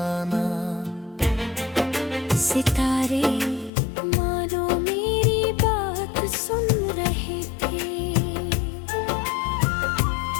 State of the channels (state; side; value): drops out; right; at 3.7 s